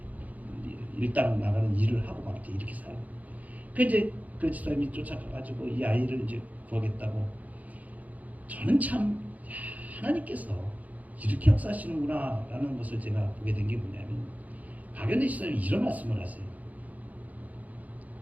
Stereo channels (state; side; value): late; left; 0.076 ms